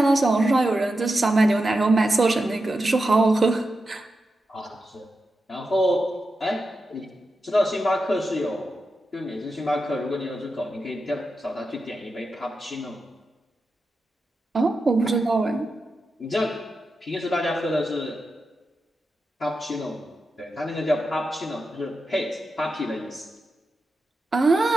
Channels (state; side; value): normal; both; correlation 0.89